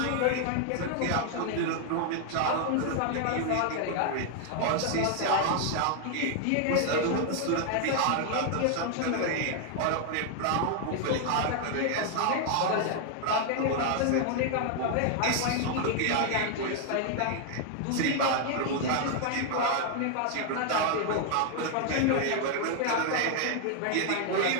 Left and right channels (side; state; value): both; different; correlation 0.00